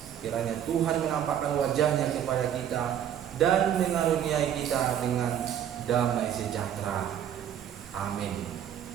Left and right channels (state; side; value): quieter; left; 9.9 dB